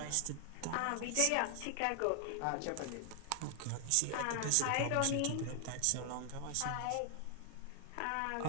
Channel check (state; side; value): different; both; correlation 0.00